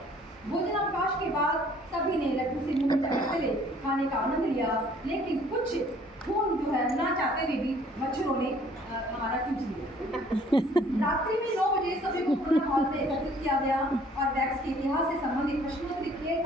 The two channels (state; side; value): normal; both; correlation 0.57